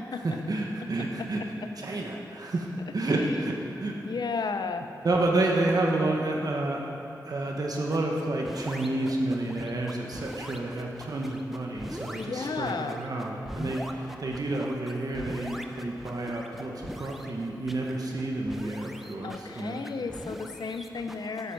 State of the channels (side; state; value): both; normal; correlation 0.80